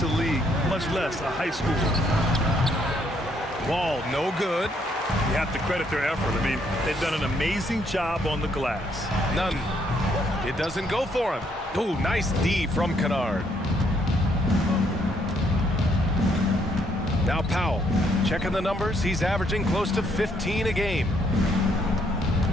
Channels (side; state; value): both; normal; correlation 0.70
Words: the league, much less a high schooler. Wall, no good. You have to credit their effort. I mean, they've done an amazing job on the glass. None. It doesn't go for him. Ooh, nice D from Kennard. Now Powell, checking the numbers. He's averaging close to 15 a game.